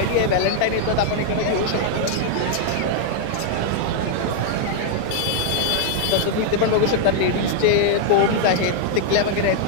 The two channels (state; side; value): different; both; correlation 0.00